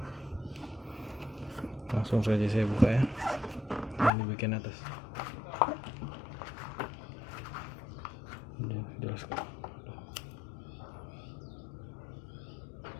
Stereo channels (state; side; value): drops out; right; at 4.1 s